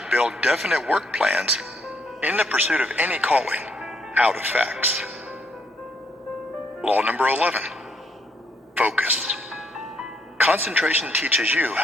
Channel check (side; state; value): both; normal; correlation 0.72